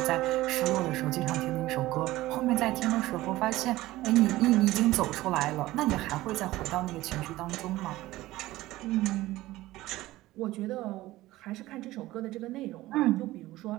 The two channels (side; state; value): left; quieter; 17.2 dB